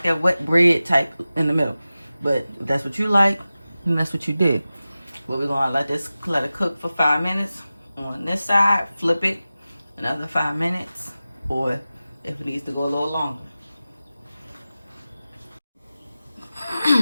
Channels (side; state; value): both; inverted; correlation -0.96